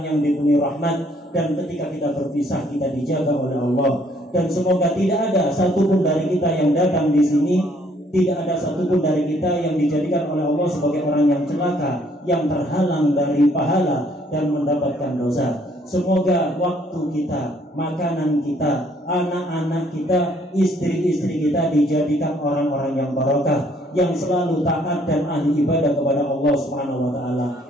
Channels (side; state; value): both; normal; correlation 0.64